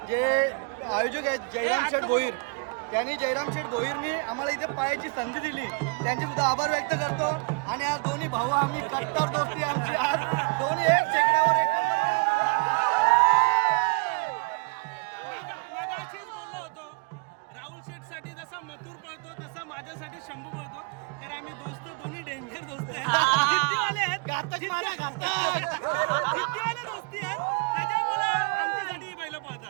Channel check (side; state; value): left; quieter; 33.9 dB